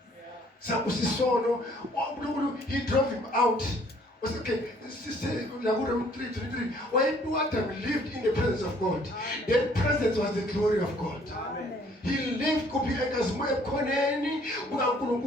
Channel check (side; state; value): both; normal; correlation 0.60